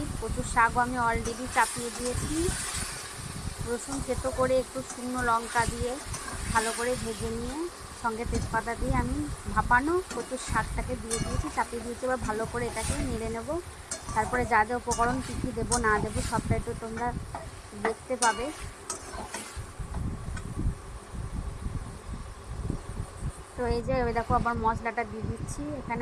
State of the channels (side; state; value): both; identical; correlation 1.00